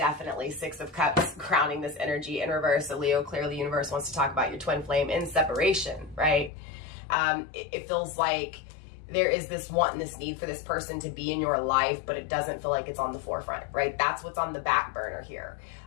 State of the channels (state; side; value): drops out; right; at 6.5 s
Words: 6 of Cups crowning this energy in reverse. So Leo, clearly the universe wants to talk about your twin flame in separation, right? It feels like there is this want and this need for this person to be in your life, but it doesn't feel like it's on the forefront, right? That's what's on the back burner here.